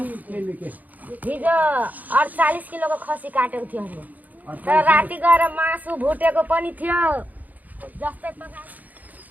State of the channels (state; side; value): late; left; 0.080 ms